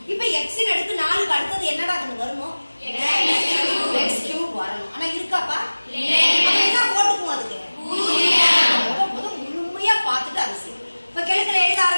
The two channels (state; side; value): inverted; both; correlation -1.00